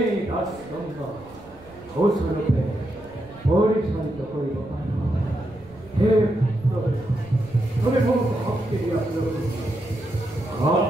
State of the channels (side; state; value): right; noise; rumble, 23 dB below the sound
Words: ৰাজদণ্ড সুচাৰুৰূপে পৰিচালিত কৰিব পাৰোঁ হে প্ৰভু তুমি মোক শক্তি দিয়া